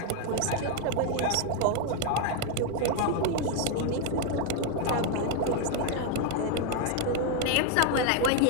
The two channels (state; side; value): different; both; correlation 0.01